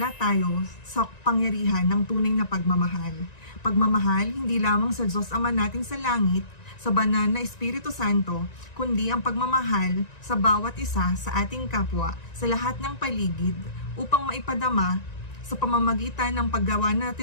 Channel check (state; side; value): late; right; 1.9 ms